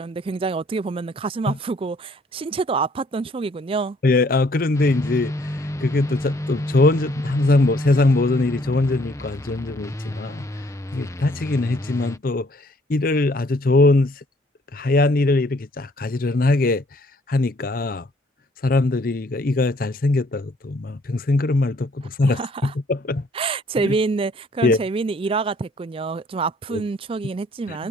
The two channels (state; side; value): normal; both; correlation 0.63